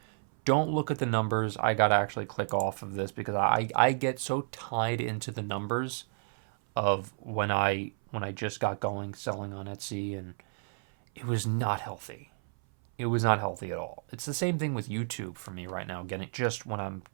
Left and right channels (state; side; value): silent; left; 57 dB below the other